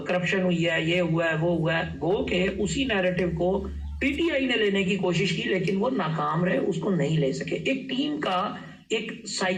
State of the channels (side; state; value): both; identical; correlation 1.00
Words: करप्शन हुई है, ये हुआ है, वो हुआ है, गो के उसी नैरेटिव को पीटीआई ने लेने की कोशिश की लेकिन वो नाकाम रहे, उसको नहीं ले सके। एक टीम का एक